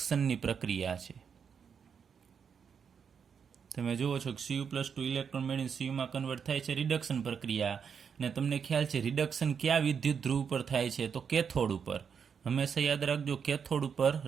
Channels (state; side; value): quieter; left; 6.8 dB